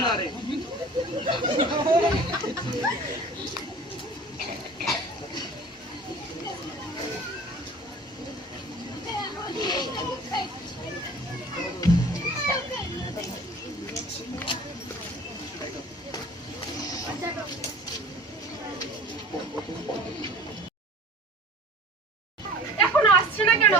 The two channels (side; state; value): both; normal; correlation 0.44